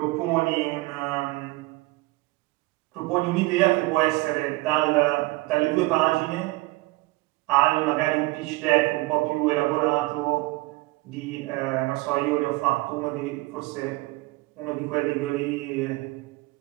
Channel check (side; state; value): left; quieter; 21.8 dB